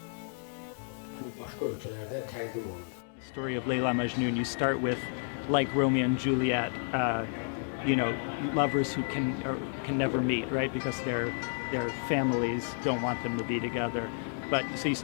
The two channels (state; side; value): silent; right; 57 dB below the other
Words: bütün başqa ölkələrdə təqdim olunur. The story of Layla Majnun, you start with, like Romeo and Juliet, lovers who can never meet, right? Because their families don't want them to be together. But so you